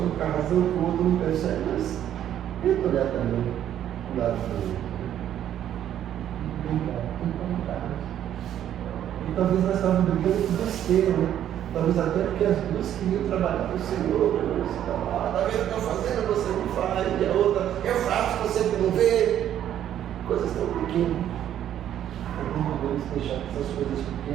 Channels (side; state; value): left; quieter; 10.8 dB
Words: com a razão que o outro não percebe, mas tenta olhar também o lado do outro. Tem vontade. E talvez nós estávamos brigando com besteira, né? Talvez até porque as duas queriam trabalhar para o Senhor, né? Você está lá, está vendo o que eu estou fazendo, você não faz, e a outra, eu faço, você não vê. Coisas tão pequenas. Não podemos deixar que essas coisas